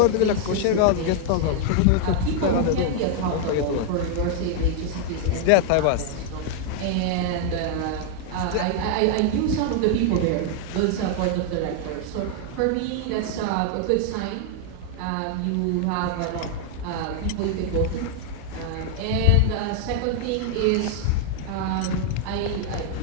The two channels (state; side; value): different; both; correlation 0.00